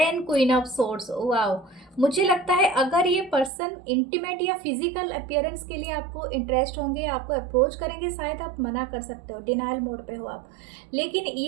queen of swords. Wow, मुझे लगता है अगर ये पर्सन इंटीमेट या फिजिकल अपीयरेंस के लिए आपको इंटरेस्ट होंगे, आपको अप्रोच करेंगे, शायद आप मना कर सकते हो, डिनाइल मोड पे हो आप। लेकिन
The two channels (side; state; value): left; drops out; at 3.5 s